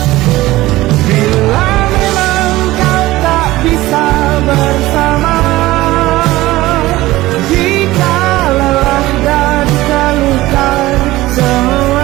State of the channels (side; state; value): left; quieter; 17.6 dB